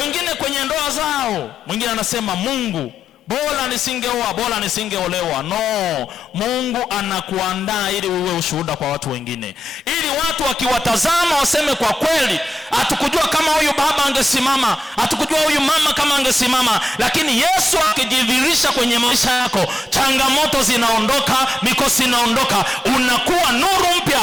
kwenye ndoa zao, mwingine anasema Mungu, bora nisingeoa, bora nisingeolewa. No, Mungu anakuandaa ili uwe ushuhuda kwa watu wengine, ili watu wakiwatazama waseme kwa kweli, hatukujua kama huyu baba angesimama, hatukujua huyu mama kama angesimama. Lakini Yesu akijidhihirisha kwenye maisha yako, changamoto zinaondoka, mikosi inaondoka, unakuwa nuru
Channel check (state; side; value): normal; both; correlation 0.90